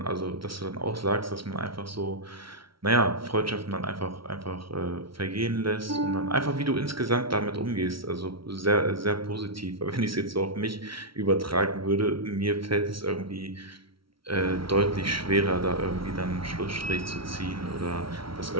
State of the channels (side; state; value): left; late; 0.74 ms